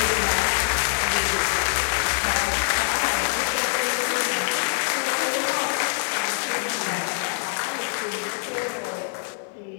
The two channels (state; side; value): silent; right; 62 dB below the other